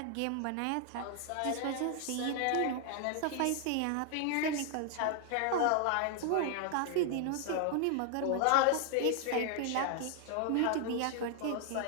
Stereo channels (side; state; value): both; different; correlation 0.00